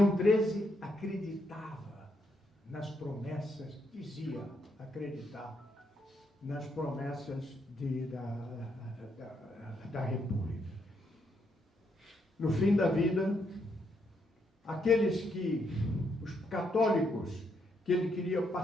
XIII acreditava nas promessas, dizia acreditar nas promessas da República. No fim da vida, os católicos que ele queria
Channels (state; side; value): normal; both; correlation 0.77